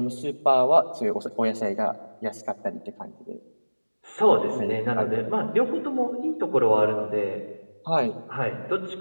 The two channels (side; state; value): both; inverted; correlation -1.00